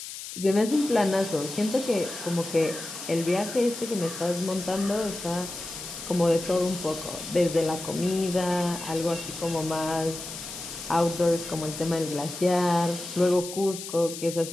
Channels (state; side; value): noise; left; hiss, 10 dB below the sound